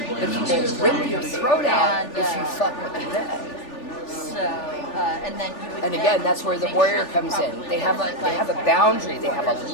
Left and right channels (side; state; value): right; late; 3.4 ms